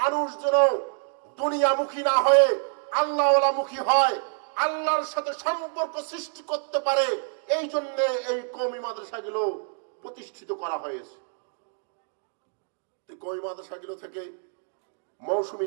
মানুষ যেন দুনিয়ামুখী না হয়ে আল্লাহওয়ালামুখী হয়, আল্লাহর সাথে সম্পর্ক সৃষ্টি করতে পারে, এই জন্য এই কওমি মাদ্রাসাগুলো প্রতিষ্ঠিত করা হয়েছে। কওমি মাদ্রাসাগুলো থেকে মৌসুমী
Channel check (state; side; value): silent; left; digital silence